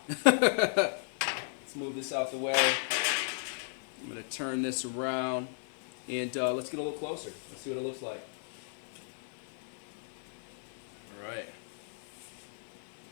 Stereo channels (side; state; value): right; silent; digital silence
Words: Let's move this out the way. I'm gonna turn this around, and let's get a little closer. Let's see what it looks like. All right.